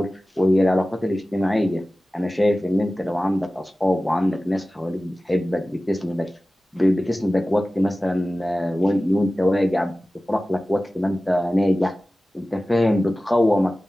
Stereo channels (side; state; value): both; normal; correlation 0.96